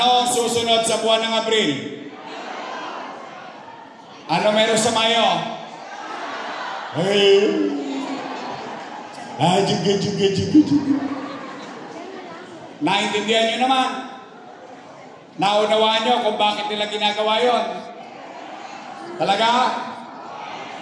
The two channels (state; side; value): identical; both; correlation 1.00